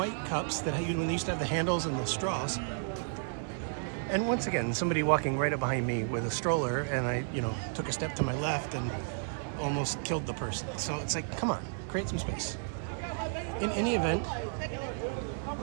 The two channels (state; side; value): silent; left; 56 dB below the other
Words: cups that when they used to have the handles and the straws. And once again, somebody walking right up behind me with a stroller, and I, took a step to my left and almost killed the person. So it's like, come on, create some space. In any event,